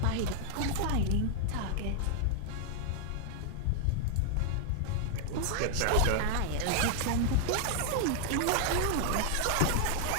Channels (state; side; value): different; both; correlation -0.01